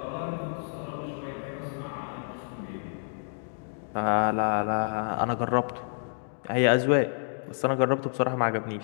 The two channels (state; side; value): silent; right; digital silence